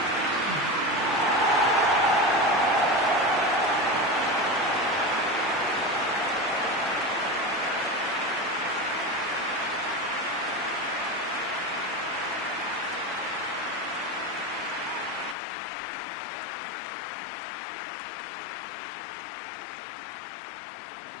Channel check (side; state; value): right; drops out; at 15.4 s